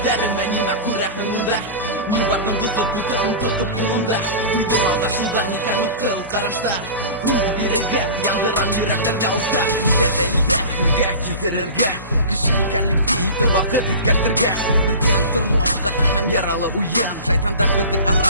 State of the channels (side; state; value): both; inverted; correlation -0.34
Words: нимә күрәхеңдә. Мин бардым дусып бутын тотып кулымда. Уйдым алдашуда никән мыткыл карашта. Йөрәгем яндырам йөрәктәрдә улта. Нидә дәлилдә хиргә килтерергә. Кеше икәнлекте ите вакыт иткәртергә. Бездән тормыш каты һәм яралы уен. Шайтандар безнең